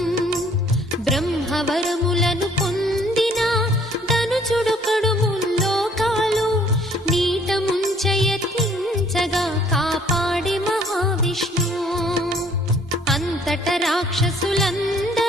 బ్రహ్మవరములను పొందిన ధనుజుడొకడు ముల్లోకాలు నీట ముంచయత్నించగా కాపాడే మహావిష్ణు. అంతట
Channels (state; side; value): normal; both; correlation 0.60